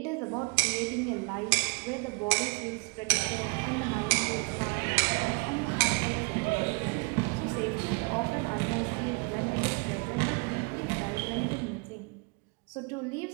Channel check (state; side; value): quieter; left; 31.4 dB